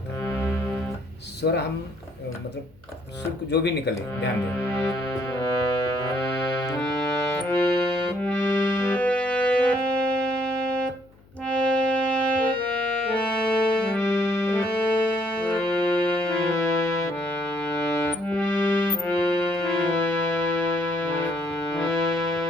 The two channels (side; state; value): left; noise; hum, 28 dB below the sound